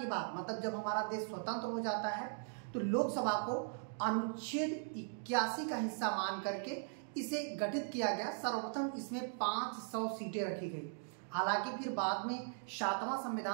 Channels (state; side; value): silent; left; digital silence